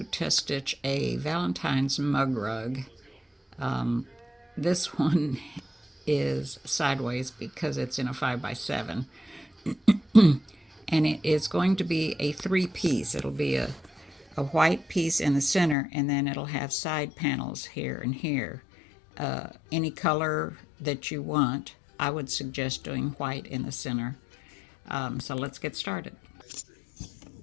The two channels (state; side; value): drops out; right; at 15.8 s